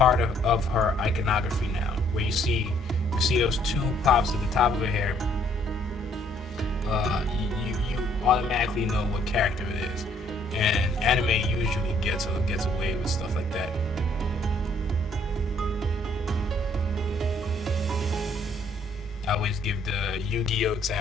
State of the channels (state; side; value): normal; both; correlation 0.64